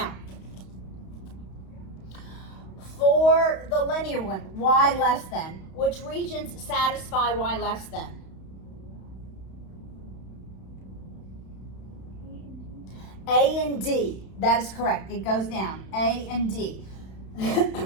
for the linear one, y less than, which regions satisfy y less than? A and D, that is correct. It goes down, A and D.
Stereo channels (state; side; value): late; right; 31 ms